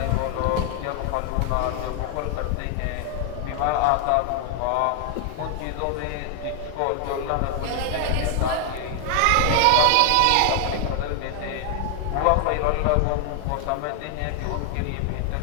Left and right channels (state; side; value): different; both; correlation 0.00